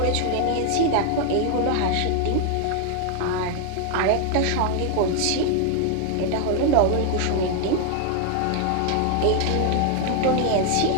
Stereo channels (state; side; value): different; both; correlation 0.00